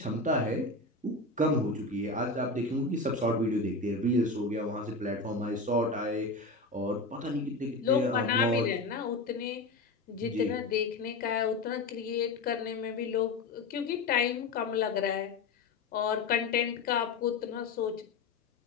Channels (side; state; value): right; quieter; 3.4 dB